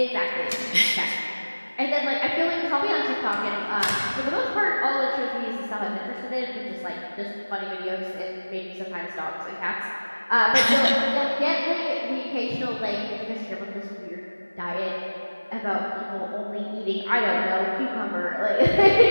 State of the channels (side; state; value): both; inverted; correlation -1.00